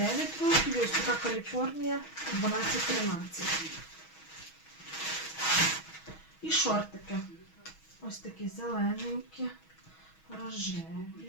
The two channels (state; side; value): late; right; 6.2 ms